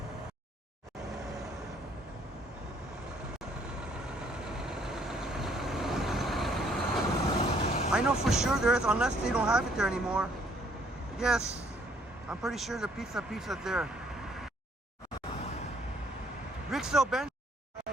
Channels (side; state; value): both; normal; correlation 0.64